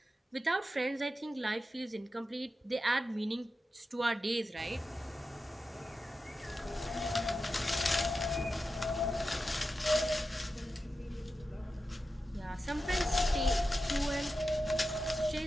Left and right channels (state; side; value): normal; both; correlation 0.91